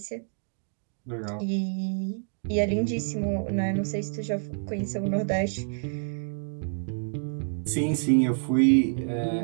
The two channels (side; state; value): left; silent; digital silence